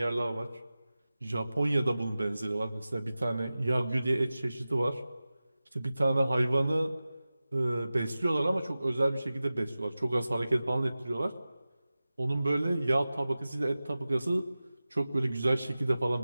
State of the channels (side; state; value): both; inverted; correlation -0.96